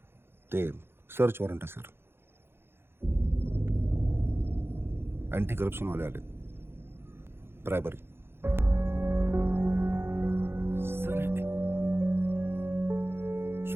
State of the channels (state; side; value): late; left; 0.11 ms